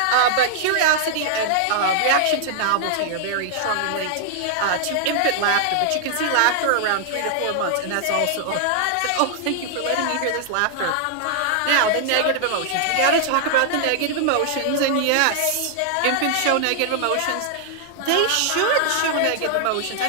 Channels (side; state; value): both; different; correlation -0.01